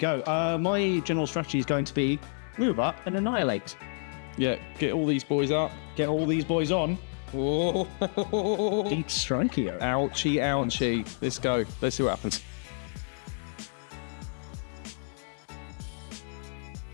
My general strategy is going to be move up and annihilate. Yeah, get all these boys up. Get all these boys on. Oh. Deep strike here. Ouchie, ouchie. Let's go. Let's see what happens.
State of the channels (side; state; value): right; silent; 58 dB below the other